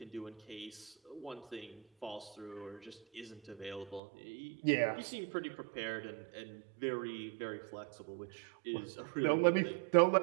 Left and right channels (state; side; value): drops out; left; at 4.0 s